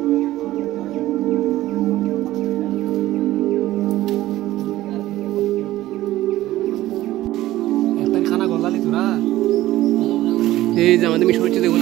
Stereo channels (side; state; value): left; quieter; 15.5 dB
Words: এই যে আমাদের মিশন হচ্ছে দেখুন